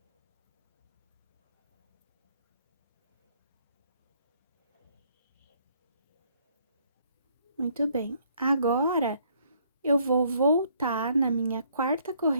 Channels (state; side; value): inverted; both; correlation -0.67